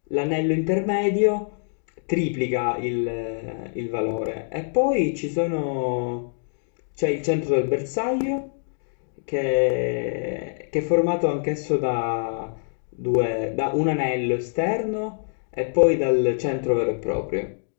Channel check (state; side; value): silent; right; digital silence